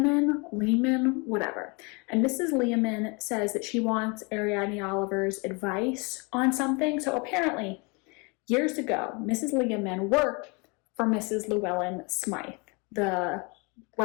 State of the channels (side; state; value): right; quieter; 30.4 dB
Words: whatever. And Mrs. Leaman says that she wants Ariadne Oliver's advice on something. So apparently, years ago, Mrs. Leaman worked for Mrs. Llewellyn Smythe, the